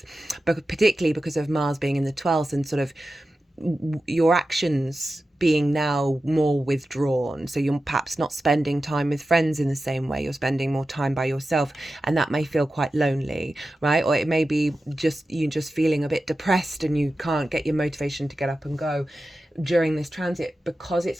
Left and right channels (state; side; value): normal; both; correlation 0.93